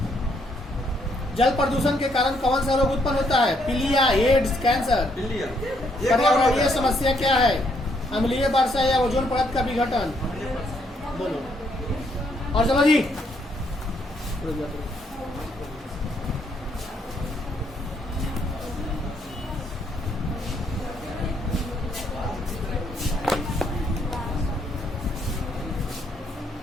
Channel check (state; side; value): normal; both; correlation 0.72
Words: जल प्रदूषण के कारण कौन सा रोग उत्पन्न होता है? पीलिया, एड्स, कैंसर? पर्यावरणीय समस्या क्या है? अम्लीय वर्षा या ओजोन परत का विघटन? बोलो। और चलो जी,